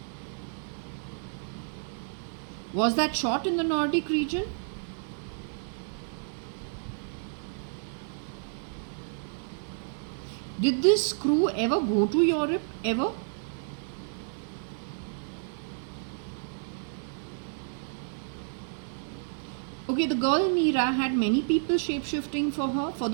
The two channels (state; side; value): silent; left; digital silence